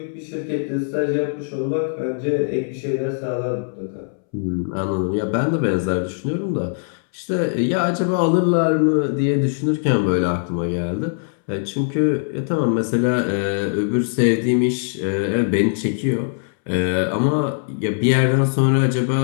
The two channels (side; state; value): right; silent; 65 dB below the other